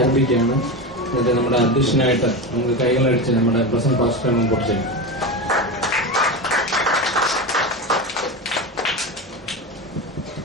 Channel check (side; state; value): both; normal; correlation 0.21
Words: എന്നിട്ട് നമ്മുടെ അധ്യക്ഷനായിട്ട് നമുക്ക് കൈകളടിച്ച് നമ്മുടെ പ്രസന്റ് പാസ്റ്റർ മുമ്പോട്ട് ചെയ്യും.